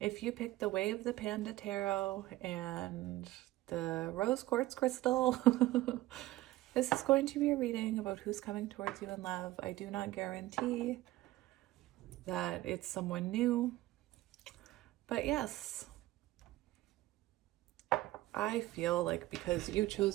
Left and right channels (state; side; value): quieter; left; 17.1 dB